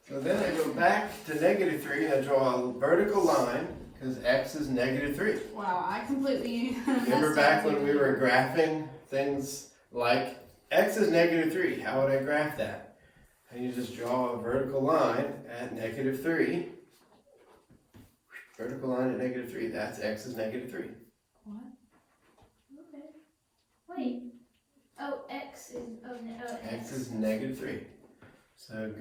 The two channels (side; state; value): both; identical; correlation 1.00